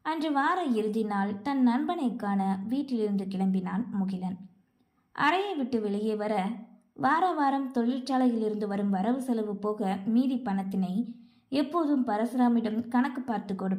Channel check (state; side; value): identical; both; correlation 1.00